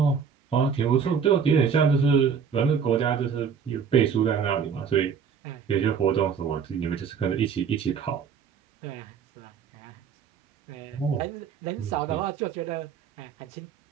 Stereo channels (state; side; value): quieter; left; 6.7 dB